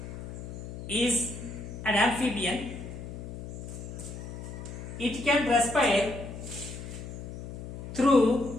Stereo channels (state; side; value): noise; left; hum, 9 dB below the sound